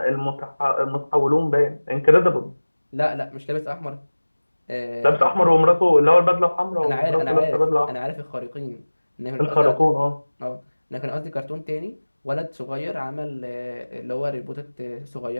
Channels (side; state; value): both; inverted; correlation -1.00